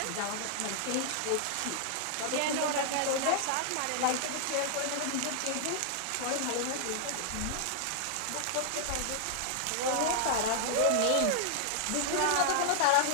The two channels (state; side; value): different; both; correlation -0.01